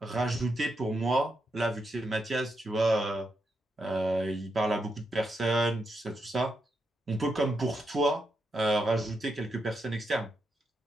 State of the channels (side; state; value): both; normal; correlation 0.83